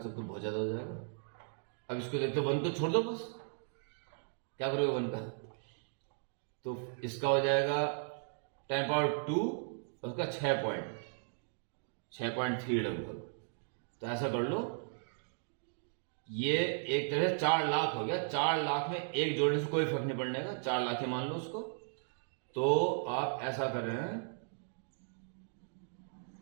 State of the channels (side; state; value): left; silent; digital silence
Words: तो बहुत ज्यादा हो जाएगा। अब इसको देखते 1 तो छोड़ दो, बस क्या करोगे 1 का, तो इसका हो जाएगा 10⁻2 और उसका 6.3 लगभग। तो ऐसा कर लो, ये एक तरह से 4 लाख हो गया। 4 लाख में एक जोड़ने से कोई फर्क नहीं पड़ने का, 4 लाख ही मान लो उसको। तो आप ऐसा कर रहे हैं